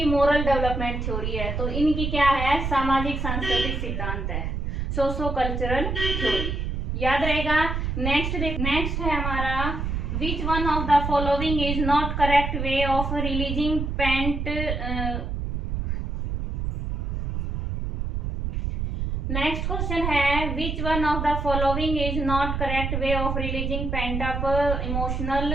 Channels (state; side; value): noise; right; rumble, 2 dB below the sound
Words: मोरल डेवलपमेंट थ्योरी है। तो इनकी क्या है, सामाजिक सांस्कृतिक सिद्धांत है, सोशो कल्चरल थ्योरी। याद रहेगा। नेक्स्ट है हमारा, which one of the following is not correct way of releasing pent. Next question है, which one of the following is not correct way of releasing pent up emotional